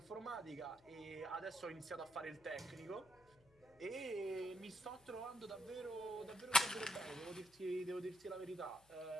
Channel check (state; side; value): noise; left; hum, 28 dB below the sound